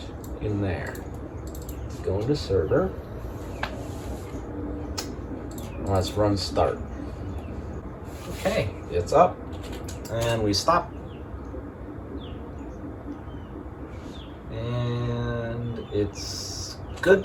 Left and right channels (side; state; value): both; identical; correlation 1.00